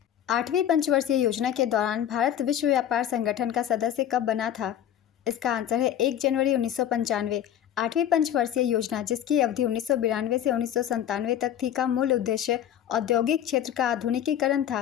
8वीं पंचवर्षीय योजना के दौरान भारत विश्व व्यापार संगठन का सदस्य कब बना था? इसका आंसर है 1 जनवरी 1995। 8वीं पंचवर्षीय योजना, जिसकी अवधि 1992 से 1997 तक थी, का मूल उद्देश्य औद्योगिक क्षेत्र का आधुनिकीकरण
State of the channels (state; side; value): quieter; right; 10.5 dB